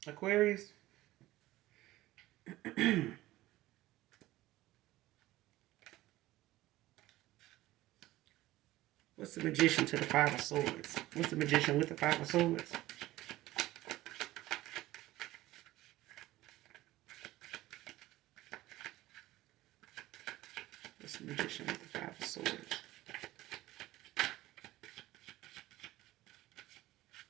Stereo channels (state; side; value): quieter; left; 16.8 dB